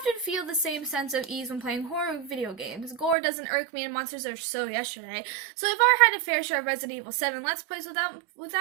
feel the same sense of ease when playing horror video games. Gore doesn't irk me and monsters are so yesterday. So I've already had a fair share of Resident Evil 7 Let's Plays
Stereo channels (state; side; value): drops out; left; at 3.2 s